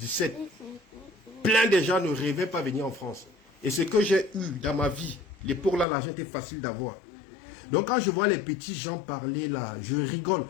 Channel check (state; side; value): drops out; right; at 5.9 s